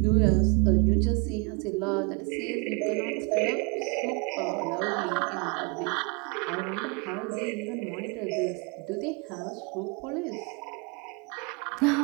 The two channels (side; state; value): left; quieter; 31.3 dB